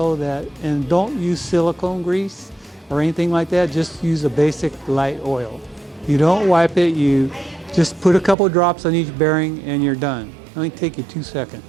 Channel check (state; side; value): drops out; left; at 8.3 s